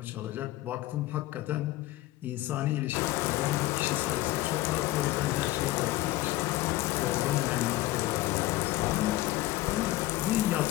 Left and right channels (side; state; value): right; quieter; 17.3 dB